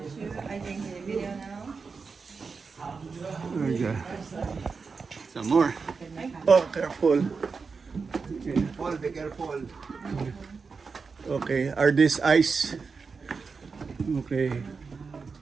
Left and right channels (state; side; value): quieter; left; 4.9 dB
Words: too. I think in the video now. There you go. Some more. Oh, careful. Paul, be careful. Okay, are these ice? Okay.